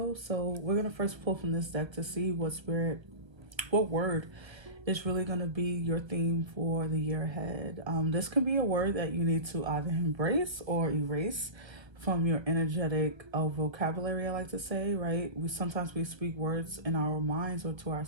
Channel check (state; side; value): late; left; 1.2 ms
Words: So we're gonna first pull from this deck to see what word is really gonna be your theme for the year ahead. This can be a word that you need to either embrace or erase from your energetic vocabulary, I like to say, right? We speak words in our minds or to